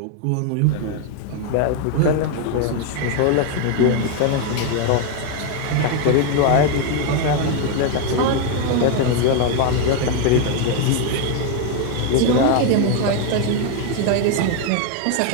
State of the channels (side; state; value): both; different; correlation 0.01